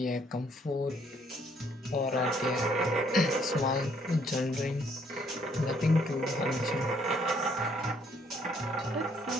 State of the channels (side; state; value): both; normal; correlation 0.66